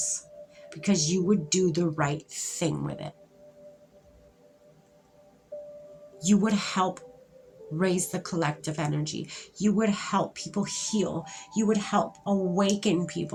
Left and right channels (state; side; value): identical; both; correlation 1.00